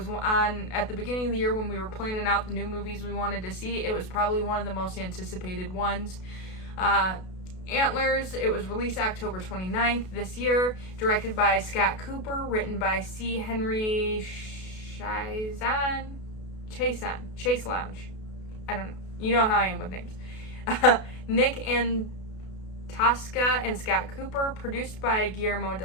on at the beginning of the year when we were planning out the new movies we wanted to see. It was probably one of the most anticipated ones. Antlers, it was released October 29th this year, directed by Scott Cooper, written by C. Henry Chase Lounge. I don't know. You know how I am with names. Nick Tosca and Scott Cooper, produced by Guillermo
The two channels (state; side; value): late; right; 32 ms